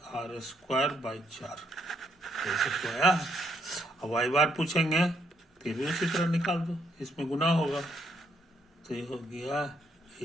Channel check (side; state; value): both; normal; correlation 0.73